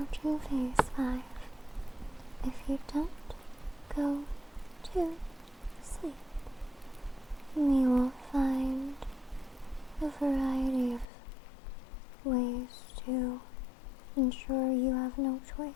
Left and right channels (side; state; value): right; drops out; at 11.1 s